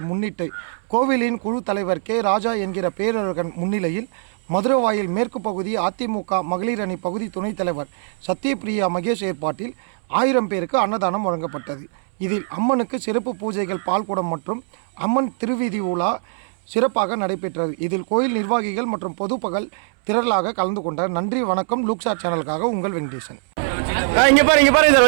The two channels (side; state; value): left; silent; 64 dB below the other